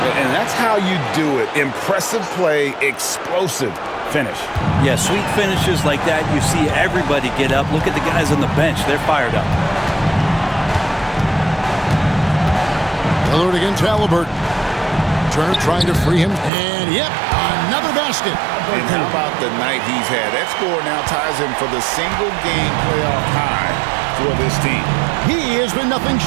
And that's how you do it. Impressive play, explosive finish. Yeah, sweet finishes like that, you see everybody get up. Look at the guys on the bench. They're fired up. Lillard against Halliburton. Turner trying to free him. And, yep, another basket. And how about the night he's had? That score now ties him for the single-game playoff high for this team. He has been nothing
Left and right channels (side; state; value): left; drops out; at 16.5 s